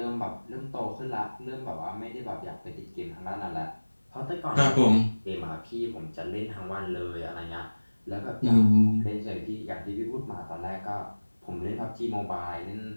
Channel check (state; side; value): inverted; both; correlation -1.00